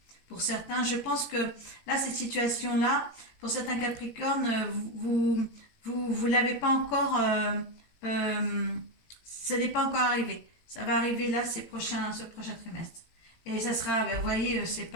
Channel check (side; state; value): right; late; 18 ms